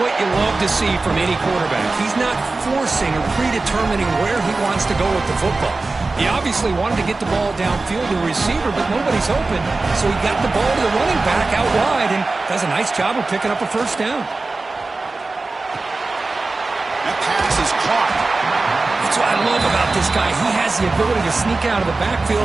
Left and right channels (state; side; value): quieter; left; 3.5 dB